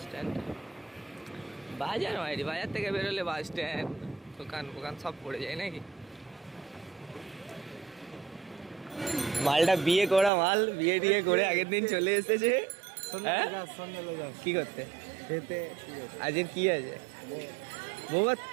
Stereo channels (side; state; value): left; drops out; at 10.3 s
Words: স্ট্যান্ড বাজার মাইরি, বাজার থেকে বেরোলে বাস স্ট্যান্ড, দোকান ফোকান সব পড়ে যায় নাকি? মালটা বিয়ে করা মাল, বিয়ে টিয়ে করে আগের দিন চলে এসেছে। কি করতে? আজকের কি আছে? বৌমা